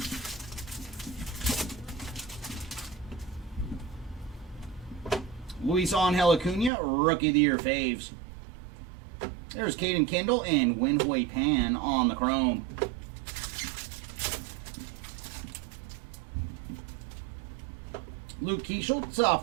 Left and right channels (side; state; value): left; drops out; at 6.7 s